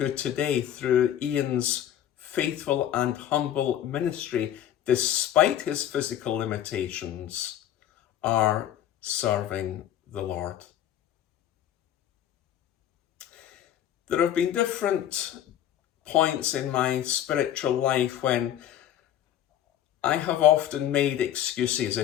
today, through Ian's faithful and humble ministry, despite his physical limitations, are serving the Lord. There have been different points in my spiritual life when I have often made excuses,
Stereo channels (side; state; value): right; quieter; 11.0 dB